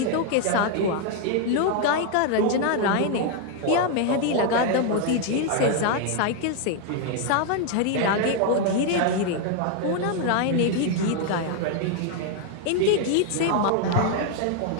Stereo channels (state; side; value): different; both; correlation 0.00